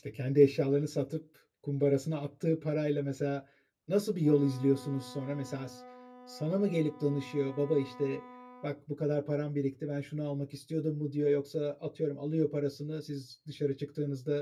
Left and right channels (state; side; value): identical; both; correlation 1.00